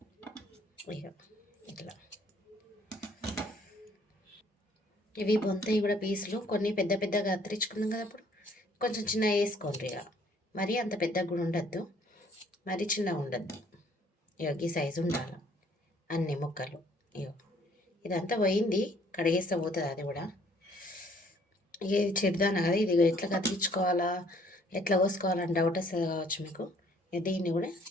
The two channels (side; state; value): both; normal; correlation 0.61